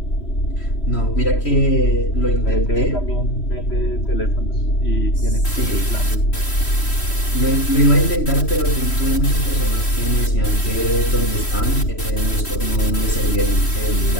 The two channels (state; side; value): late; right; 3.1 ms